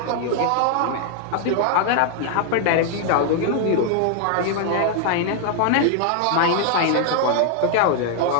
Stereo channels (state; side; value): different; both; correlation 0.00